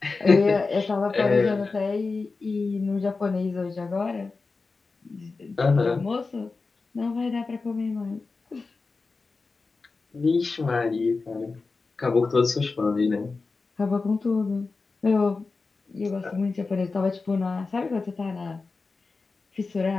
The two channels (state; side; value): quieter; right; 4.1 dB